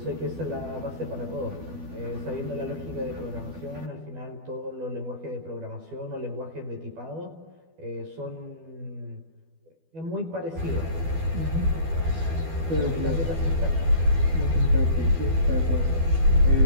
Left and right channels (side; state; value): left; late; 12 ms